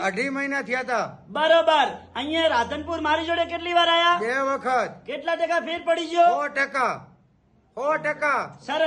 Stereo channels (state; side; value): identical; both; correlation 1.00